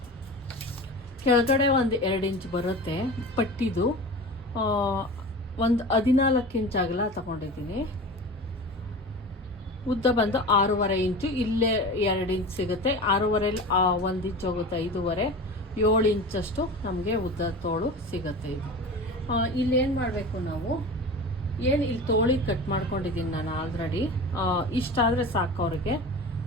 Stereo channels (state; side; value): normal; both; correlation 0.33